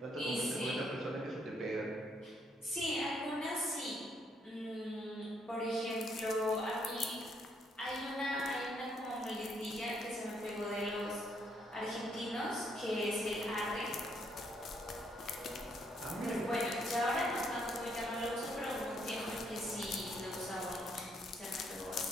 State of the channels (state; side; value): normal; both; correlation 0.72